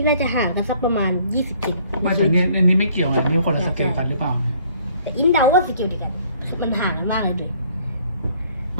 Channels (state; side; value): inverted; both; correlation -0.60